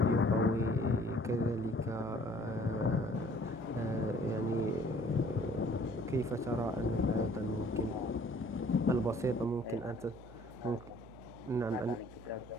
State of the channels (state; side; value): noise; right; hum, 19 dB below the sound